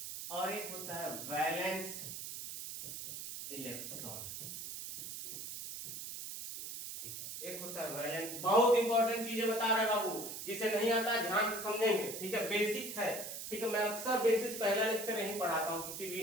और एक होता है वैलेंस इलेक्ट्रॉन, ठीक है। एक होता है वैलेंस, बहुत इंपॉर्टेंट चीजें बता रहे बाबू, जिसे नहीं आता ध्यान से समझेंगे, ठीक है, बेसिक है, ठीक है। मैं अक्सर बेसिक पहला लेक्चर यहीं पढ़ाता हूँ, किसी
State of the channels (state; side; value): noise; right; hiss, 8 dB below the sound